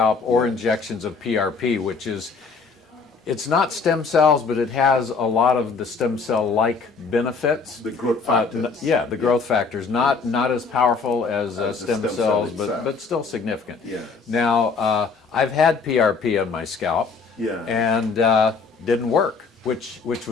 or injections of PRP, which is, it's not stem cells, but it has a lot of the stem cell-like benefits. The growth factors. Yeah, the growth factors, not as powerful as the stem stem cell cells, itself. but still significant. Yes. Now, I've had PRP on my scalp, Yeah. and didn't work, which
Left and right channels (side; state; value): right; quieter; 4.8 dB